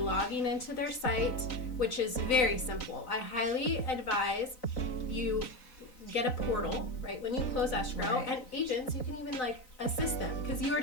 into their site, which is very simple. I highly advise you get a portal, right, when you close escrow, Right. and agents, you can even like assist them because you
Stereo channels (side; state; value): right; late; 3.9 ms